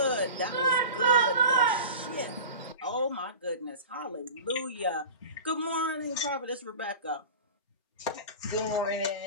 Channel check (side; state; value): both; inverted; correlation -0.35